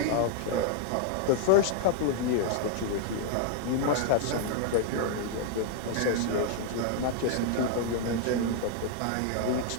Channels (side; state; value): both; different; correlation 0.00